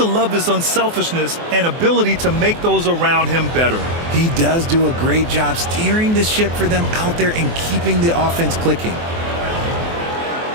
love his unselfishness and ability to make those around him better. He does do a great job steering the ship for them out there and keeping the offense clicking.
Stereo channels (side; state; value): left; late; 24 ms